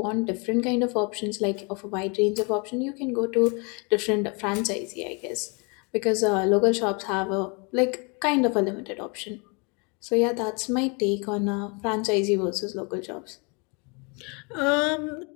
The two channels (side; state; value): right; quieter; 32.6 dB